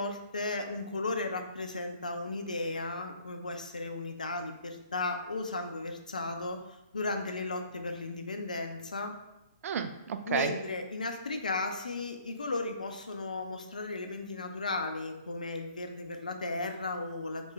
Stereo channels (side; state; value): both; inverted; correlation -0.57